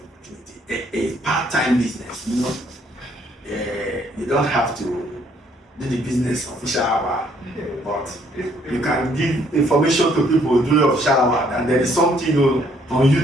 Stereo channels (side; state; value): both; normal; correlation 0.66